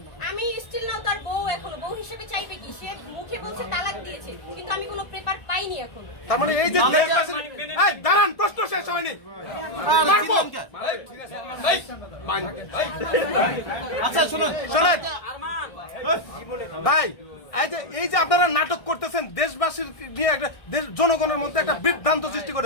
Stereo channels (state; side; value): late; right; 1.6 ms